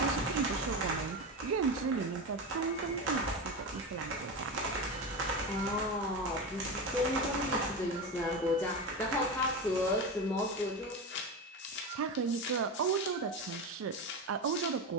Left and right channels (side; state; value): both; normal; correlation 0.20